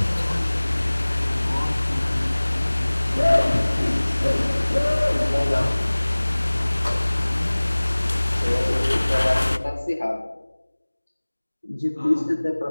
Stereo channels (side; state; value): both; inverted; correlation -1.00